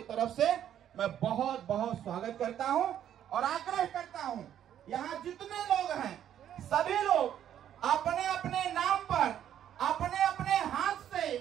तरफ से मैं बहुत बहुत स्वागत करता हूं और आग्रह करता हूं, यहाँ जितने लोग हैं सभी लोग अपने अपने नाम पर अपने अपने हाथ से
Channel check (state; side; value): quieter; left; 10.4 dB